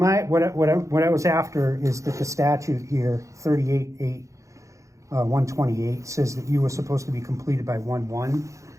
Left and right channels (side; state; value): left; late; 0.15 ms